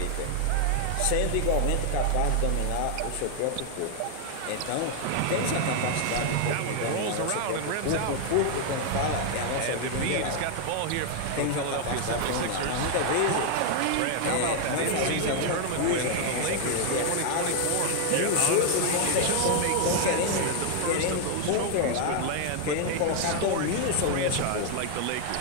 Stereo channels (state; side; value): different; both; correlation 0.00